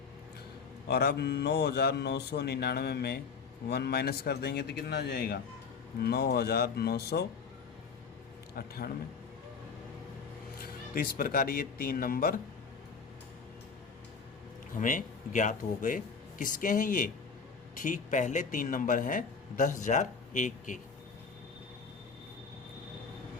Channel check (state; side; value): quieter; right; 5.4 dB